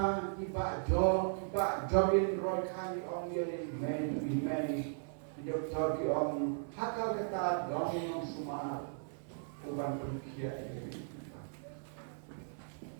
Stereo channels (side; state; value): left; silent; 53 dB below the other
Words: iba jogin Roy Khan on yelin men doktor ki on hakal kata dong sumar uban perkia ini